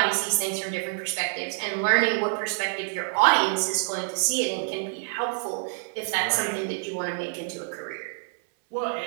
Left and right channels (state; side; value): silent; left; 56 dB below the other